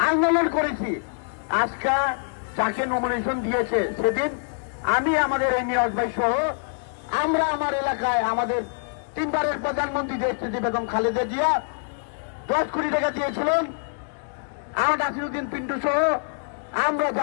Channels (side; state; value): right; silent; digital silence